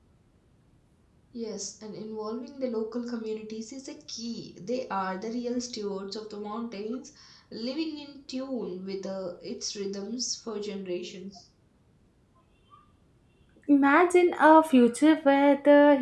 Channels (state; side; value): identical; both; correlation 1.00